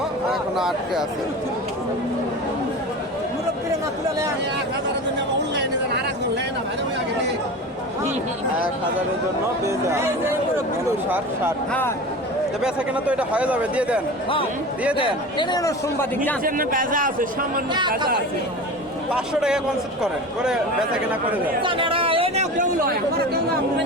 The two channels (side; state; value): both; normal; correlation 0.32